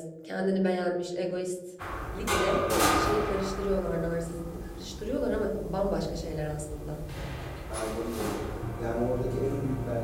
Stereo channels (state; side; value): identical; both; correlation 1.00